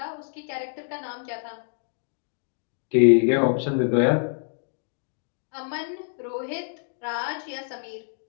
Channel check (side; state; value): right; silent; digital silence